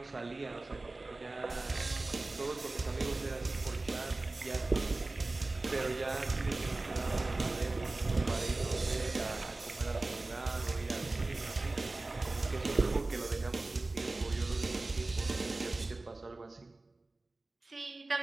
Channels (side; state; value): left; quieter; 3.1 dB